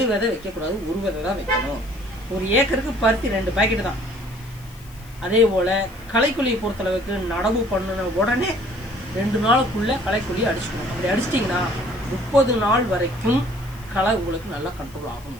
விதை வைக்கக்கூடாது, 1 விதை தான் வைக்கணும். ஒரு ஏக்கருக்கு பருத்தி 2 பாக்கெட் தான். அதே போல் களைக்கொல்லியை பொறுத்தளவுக்கு நடவு பண்ணின உடனே 2 நாளுக்குள்ள களைக்கொல்லியை அடிச்சுக்கணும். அப்படி அடிச்சிட்டிங்கன்னா 30 நாள் வரைக்கும் களை உங்களுக்கு நல்லா கண்ட்ரோல் ஆகும்.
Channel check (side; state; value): left; noise; hiss, 24 dB below the sound